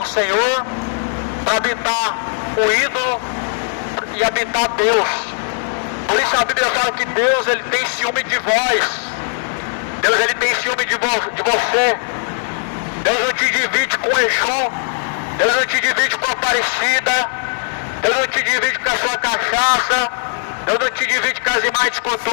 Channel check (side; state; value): right; silent; digital silence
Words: senhor, para habitar o ídolo e habitar Deus. Por isso a Bíblia fala que Deus, Ele tem ciúme de vós. Deus, Ele tem ciúme de você. Deus não te divide com Exu. Deus não te divide com a Aparecida. Deus não te divide com a sua cachaça. Deus não te divide com as imagens de